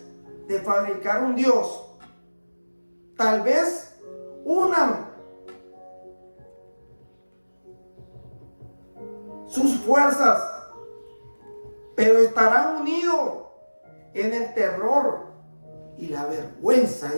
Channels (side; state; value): both; inverted; correlation -1.00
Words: de fabricar un Dios. Tal vez unan sus fuerzas, pero estarán unidos en el terror y la vergüenza,